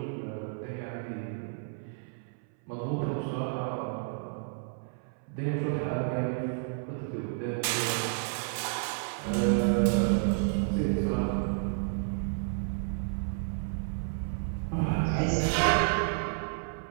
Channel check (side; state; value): left; silent; 57 dB below the other